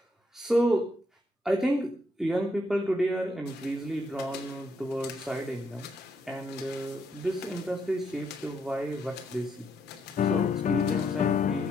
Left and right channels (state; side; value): normal; both; correlation 0.75